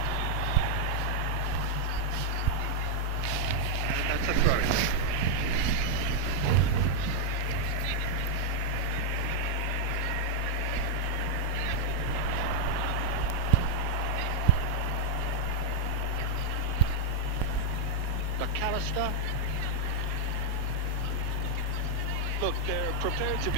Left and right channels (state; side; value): different; both; correlation -0.01